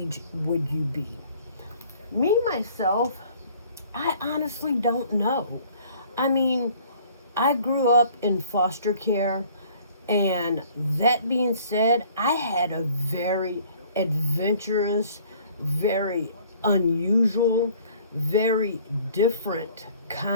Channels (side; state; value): both; inverted; correlation -0.55